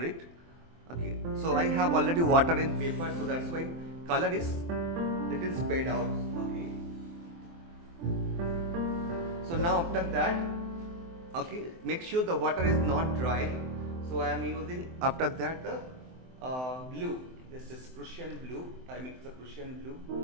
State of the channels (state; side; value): late; left; 23 ms